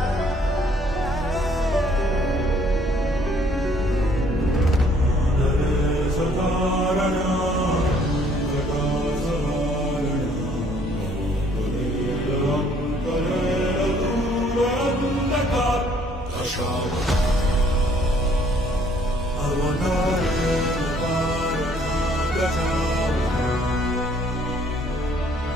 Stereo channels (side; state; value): both; normal; correlation 0.62